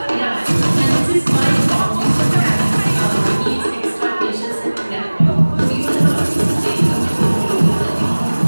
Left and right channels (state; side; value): inverted; both; correlation -1.00